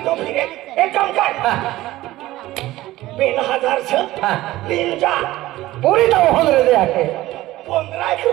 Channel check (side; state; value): left; quieter; 16.7 dB